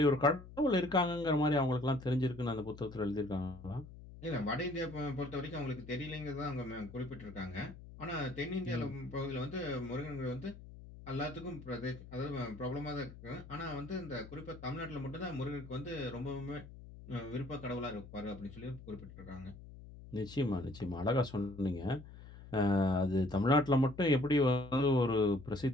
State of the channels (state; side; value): noise; left; hum, 16 dB below the sound